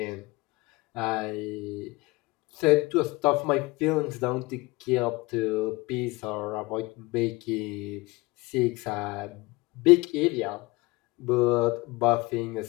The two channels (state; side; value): quieter; right; 22.8 dB